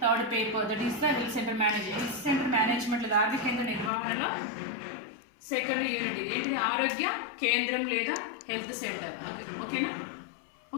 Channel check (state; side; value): drops out; right; at 3.9 s